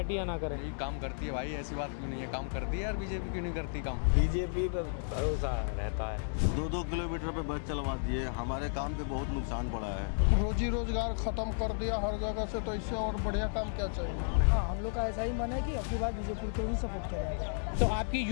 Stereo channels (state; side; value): silent; right; digital silence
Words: या ना करे। यही काम करती है भाई, ऐसी बात क्यों नहीं है, काम करती है यार। बीजेपी क्यों नहीं करती काम? बीजेपी पे भरोसा रहता है। 2-2 किलोमीटर पे बस चलवा दिए, हमारे काम पे बहुत नुकसान पड़ा है। रोजी रोजगार खत्म कर दिया हर जगह से, तो इससे और बढ़िया काम क्या चाहिए? हाँ, हम लोग का ऐसा ही मन है कि अगली बार बीजेपी को ही सपोर्ट करेंगे। तो आपकी